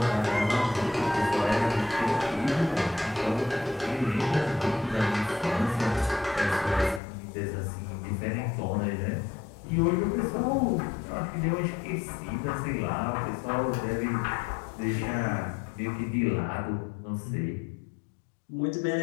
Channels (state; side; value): drops out; right; at 7.0 s